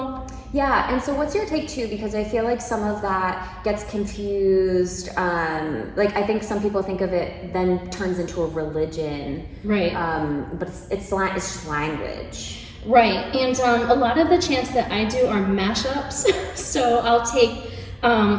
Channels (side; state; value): both; identical; correlation 1.00